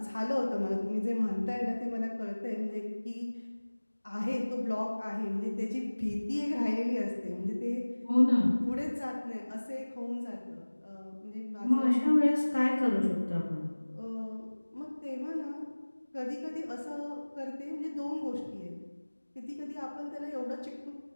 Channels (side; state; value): both; inverted; correlation -1.00